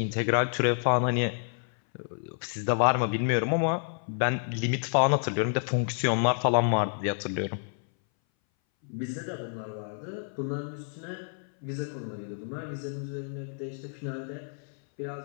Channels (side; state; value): right; silent; 58 dB below the other